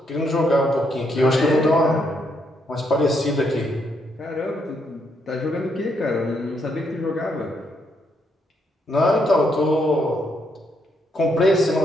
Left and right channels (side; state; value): both; normal; correlation 0.76